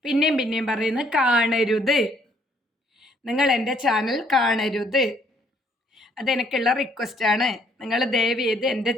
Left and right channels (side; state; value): both; normal; correlation 0.65